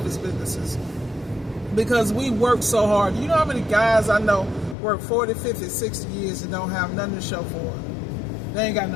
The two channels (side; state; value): right; drops out; at 4.8 s